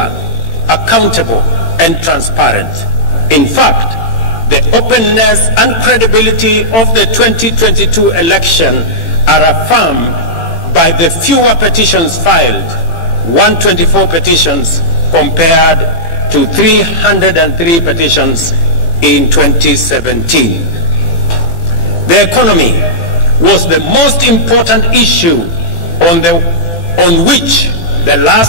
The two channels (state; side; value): late; right; 18 ms